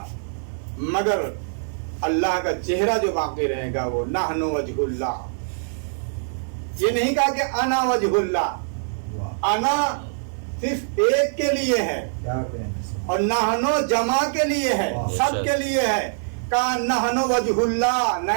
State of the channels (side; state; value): left; silent; digital silence